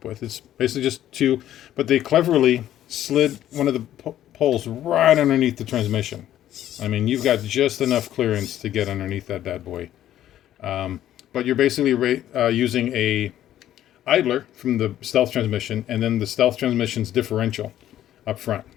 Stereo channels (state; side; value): quieter; right; 12.1 dB